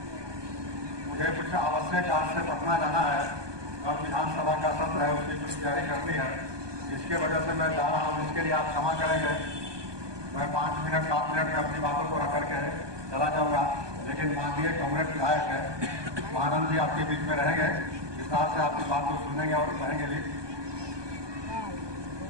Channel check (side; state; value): left; late; 1.2 ms